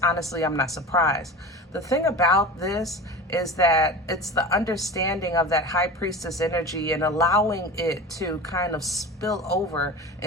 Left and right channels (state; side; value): normal; both; correlation 0.31